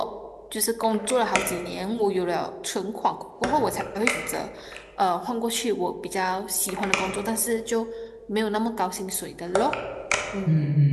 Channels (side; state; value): both; identical; correlation 1.00